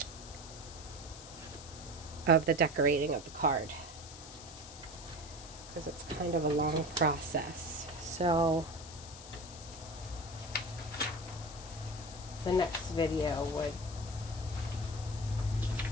the decorating of the card, because it's kind of a long process. So the next video would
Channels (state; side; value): noise; left; hiss, 14 dB below the sound